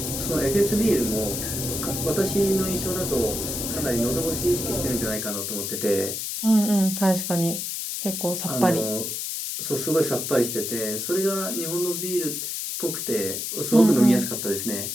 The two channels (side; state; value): left; noise; hiss, 3 dB below the sound